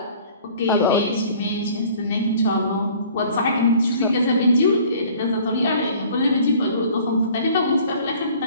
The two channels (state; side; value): inverted; both; correlation -0.51